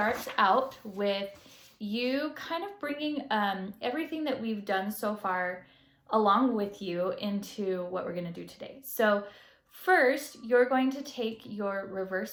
out with you kind of bringing everything that we've done so far along with you into what we're going to do today. So first, you're going to take your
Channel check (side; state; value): both; identical; correlation 1.00